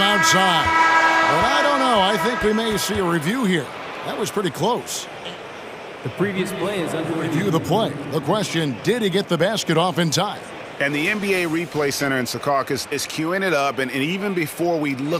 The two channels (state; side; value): identical; both; correlation 1.00